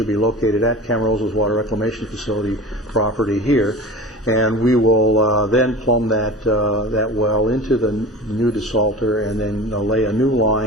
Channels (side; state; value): both; normal; correlation 0.35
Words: be located at Camarosa's water reclamation facility property here. And we will then plumb that well into the new desalter and then lay a new